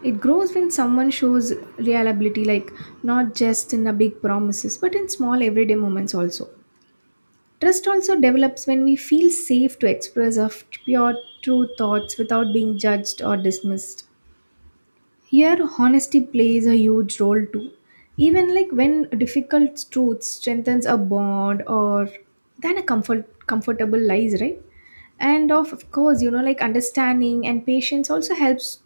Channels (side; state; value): both; inverted; correlation -1.00